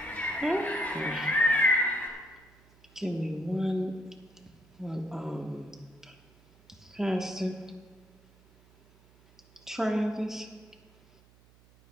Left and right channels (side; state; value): right; noise; hum, 28 dB below the sound